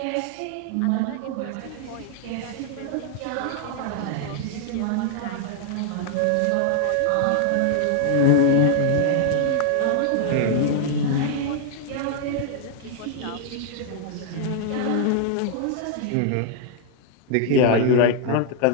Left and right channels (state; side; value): different; both; correlation 0.00